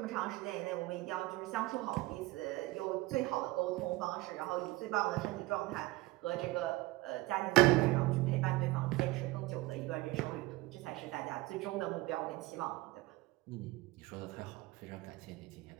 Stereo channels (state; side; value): quieter; left; 20.1 dB